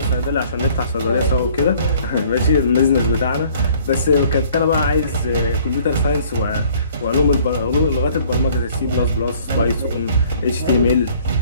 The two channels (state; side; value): inverted; both; correlation -0.57